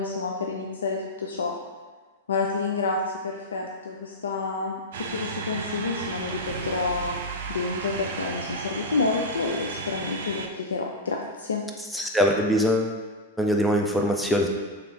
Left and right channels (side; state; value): both; normal; correlation -0.01